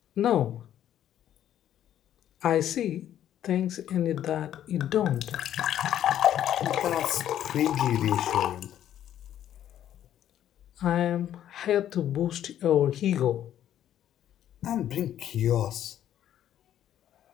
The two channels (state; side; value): quieter; right; 11.1 dB